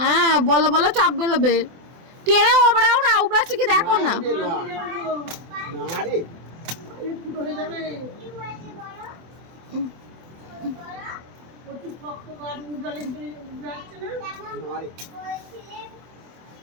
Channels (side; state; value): left; late; 24 ms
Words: বলো বলো, চাপ বেরোবে। টেনে ওবড়াও না, উবড়াচ্ছে কি দেখো না।